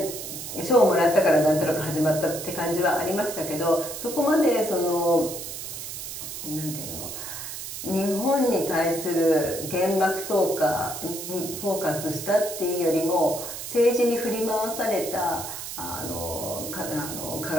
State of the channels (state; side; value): noise; right; hiss, 8 dB below the sound